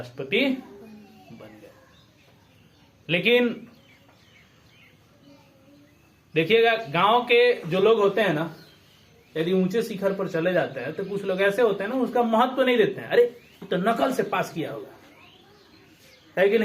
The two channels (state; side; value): identical; both; correlation 1.00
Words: बन गए। लेकिन देखिएगा, गांव के जो लोग होते हैं ना, यदि ऊंचे शिखर पर चले जाते हैं तो कुछ लोग ऐसे होते हैं ना, उसका महत्व तो नहीं देते हैं। अरे ये तो नकल से पास किया होगा, है कि